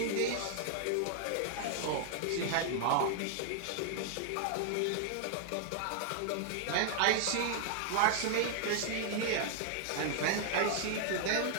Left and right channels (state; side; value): different; both; correlation 0.00